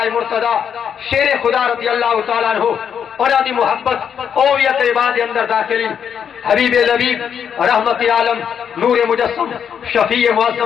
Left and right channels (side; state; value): right; quieter; 7.9 dB